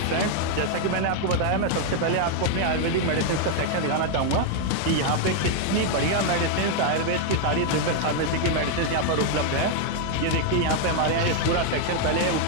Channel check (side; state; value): both; different; correlation 0.00